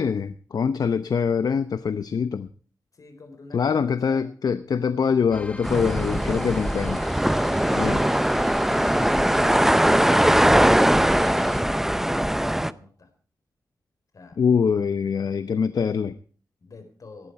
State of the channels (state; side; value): normal; both; correlation 0.90